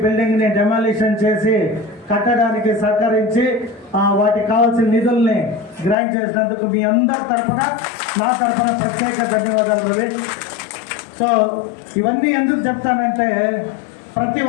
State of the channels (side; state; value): right; drops out; at 6.0 s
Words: బిల్డింగ్ని డెమాలిషన్ చేసి కట్టడానికి సహకరించి వాటికి కావాల్సిన నిధుల్ని గ్రాంట్ చేసినందుకు మీ అందరి తరఫున, నా తరఫున ప్రత్యేక ధన్యవాదాలు రవి. సో ఇవన్నీ ఎందుకు చెప్తానంటే, ప్రతి